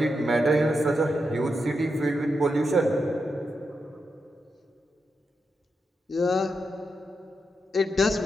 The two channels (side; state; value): both; normal; correlation 0.86